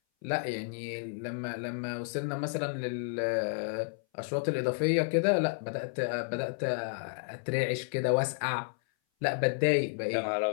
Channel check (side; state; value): right; silent; 57 dB below the other